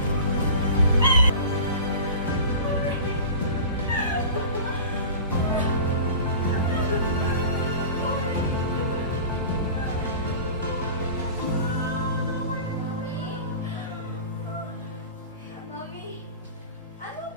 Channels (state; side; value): inverted; both; correlation -0.37